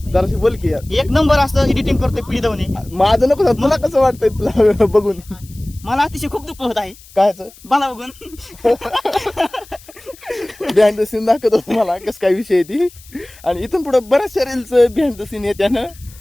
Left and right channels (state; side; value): noise; left; hiss, 23 dB below the sound